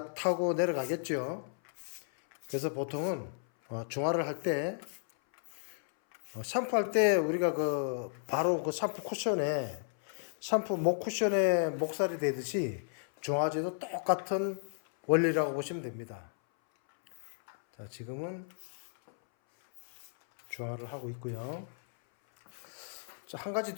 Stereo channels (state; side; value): silent; right; 55 dB below the other